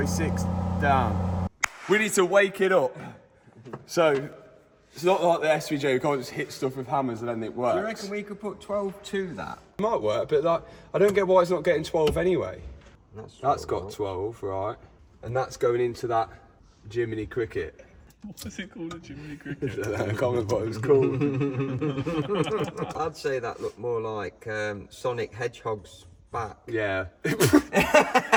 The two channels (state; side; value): identical; both; correlation 1.00